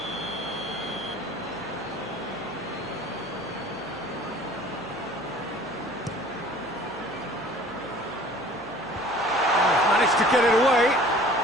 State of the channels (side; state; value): left; noise; hum, 21 dB below the sound